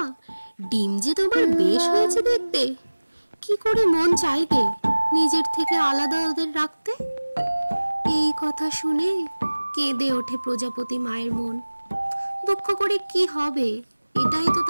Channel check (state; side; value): inverted; both; correlation -1.00